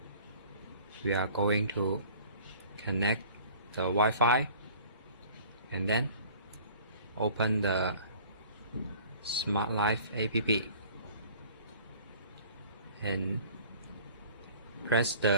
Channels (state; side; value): inverted; both; correlation -0.49